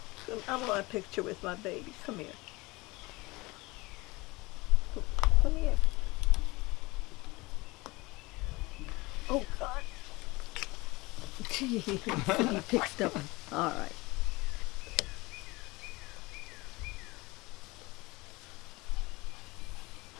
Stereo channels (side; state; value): right; quieter; 23.0 dB